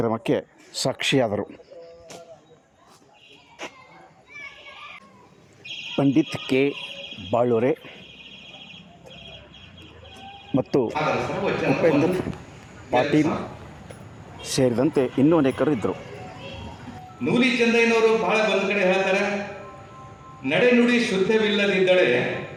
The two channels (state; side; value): identical; both; correlation 1.00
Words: ಸಾಕ್ಷಿಯಾದರು. ಪಂಡಿತ್ ಕೆ ಬಾಳೂರೆ ಮತ್ತು ಉಪೇಂದ್ರ ಪಾಟೀಲ್ ಸೇರಿದಂತೆ ಇನ್ನೂ ಅನೇಕರು ಇದ್ದರು. ನೂಲಿ ಚಂದಯ್ಯನವರು ಬಹಳ ಒಂದು ಕಡೆ ಹೇಳ್ತಾರೆ, ನಡೆನುಡಿ ಶುದ್ಧವಿಲ್ಲದಿದ್ದಳೆ